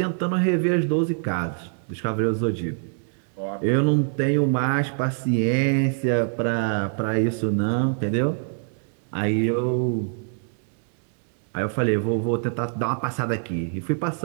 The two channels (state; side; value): silent; left; digital silence